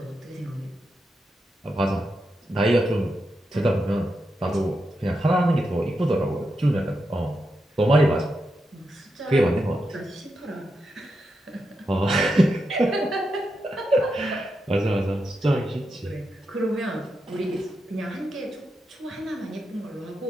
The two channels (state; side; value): normal; both; correlation 0.86